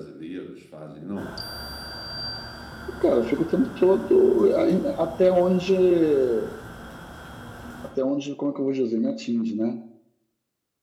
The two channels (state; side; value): identical; both; correlation 1.00